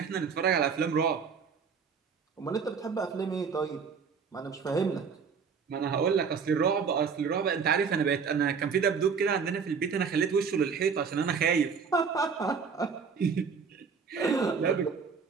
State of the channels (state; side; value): quieter; left; 5.9 dB